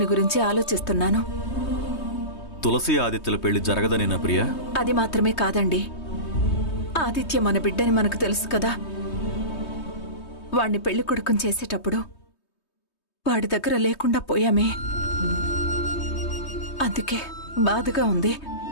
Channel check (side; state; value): right; late; 3.2 ms